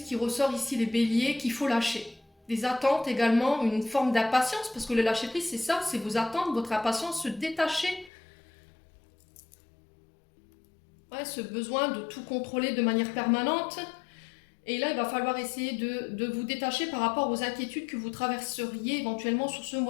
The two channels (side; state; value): right; drops out; at 8.1 s